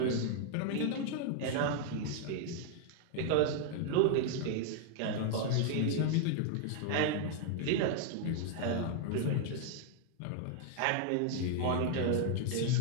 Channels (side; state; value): both; different; correlation 0.00